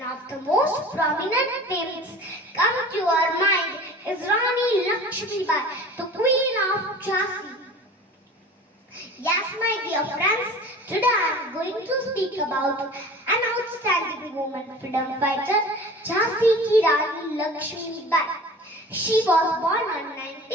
of the most prominent names come to our mind is Rani Lakshmibai, the Queen of Jhansi. Yes, my dear friends, today I am going to speak about an outstanding woman freedom fighter, Jhansi ki Rani Lakshmibai. She was born on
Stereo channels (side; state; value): both; normal; correlation 0.40